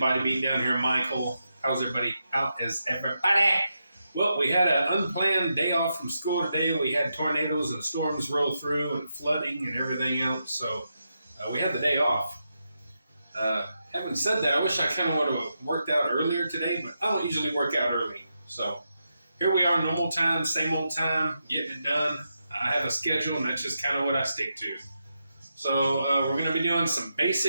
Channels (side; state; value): both; inverted; correlation -0.85